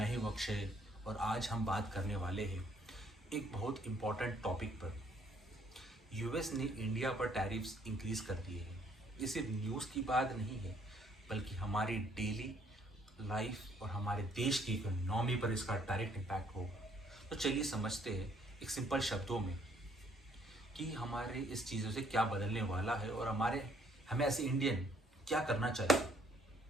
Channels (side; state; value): both; normal; correlation 0.64